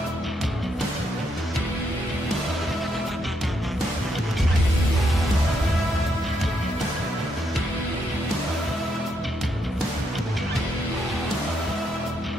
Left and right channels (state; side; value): normal; both; correlation 0.77